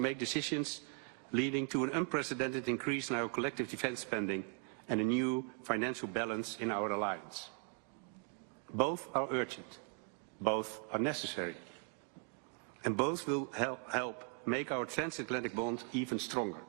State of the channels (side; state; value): left; quieter; 36.4 dB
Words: decisions leading to an unprecedented increase in our collective defense spending and a new financial balance in our alliance. Both are urgent, both are necessary, and both will help make our transatlantic bond even stronger,